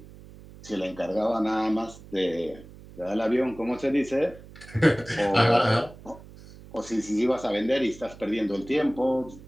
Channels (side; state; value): right; noise; hum, 19 dB below the sound